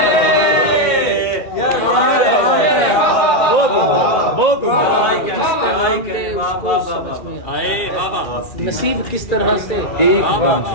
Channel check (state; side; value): late; right; 2.4 ms